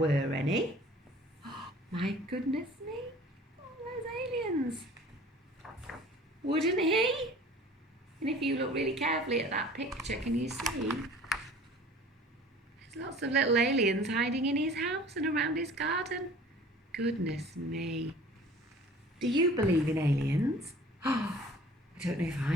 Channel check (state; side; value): normal; both; correlation 0.47